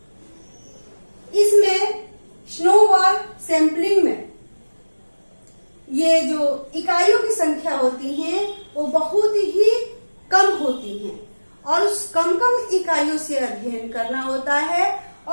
इसमें स्नोबॉल सैंपलिंग में ये जो इकाइयों की संख्या होती है वो बहुत ही कम होती हैं और उस कम इकाइयों से अध्ययन करना होता है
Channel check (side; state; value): both; inverted; correlation -1.00